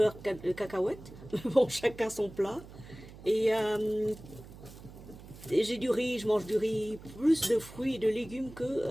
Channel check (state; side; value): noise; right; hum, 17 dB below the sound